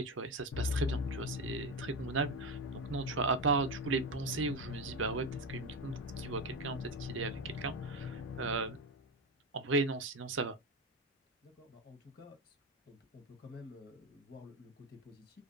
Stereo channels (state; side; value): normal; both; correlation 0.17